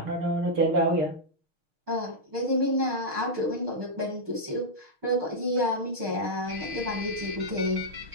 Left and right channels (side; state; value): left; late; 6.4 ms